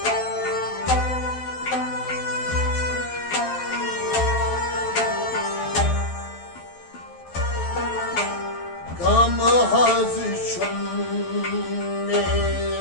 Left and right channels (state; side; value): late; right; 12 ms